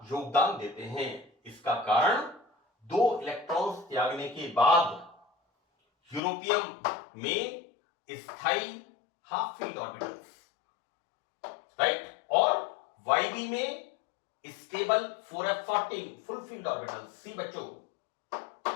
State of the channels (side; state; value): right; drops out; at 6.2 s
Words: योगदान देते हैं। इसका कारण 2 इलेक्ट्रॉन्स त्यागने के बाद यूरोपियम में स्थायी हाफ फील्ड ऑर्बिटल्स, राइट, और YB में stable 4F14 full filled orbitals. See बच्चों,